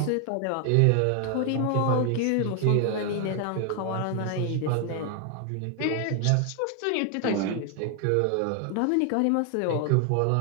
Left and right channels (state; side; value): different; both; correlation 0.00